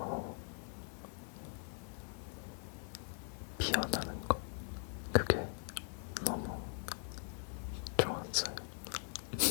피어나는 것 그게 너무 좋았어요.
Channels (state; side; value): silent; right; 51 dB below the other